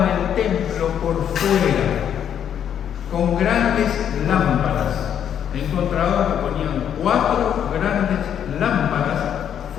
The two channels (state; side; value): quieter; right; 9.1 dB